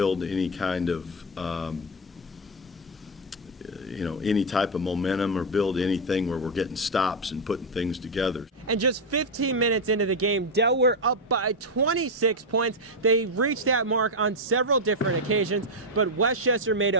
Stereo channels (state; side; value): normal; both; correlation 0.05